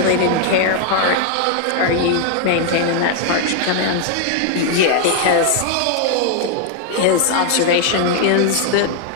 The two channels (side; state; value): both; different; correlation 0.00